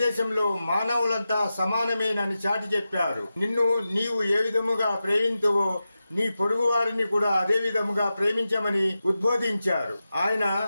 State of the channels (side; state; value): both; inverted; correlation -0.92